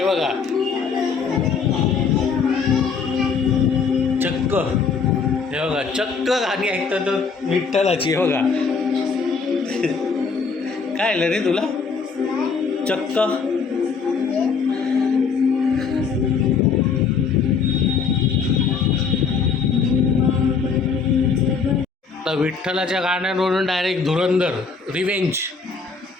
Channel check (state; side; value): quieter; right; 5.4 dB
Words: बघा, चक्क, हे बघा, चक्क गाणी ऐकतो तो विठ्ठलाची. हे बघा, काय आलं रे तुला? चक्क तर विठ्ठलाच्या गाण्यांवरून डायरेक्ट धुरंधर रिवेंज,